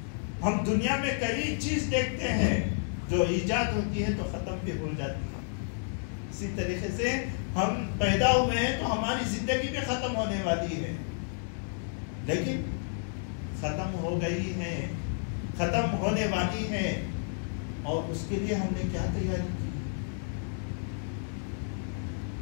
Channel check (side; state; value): right; silent; 57 dB below the other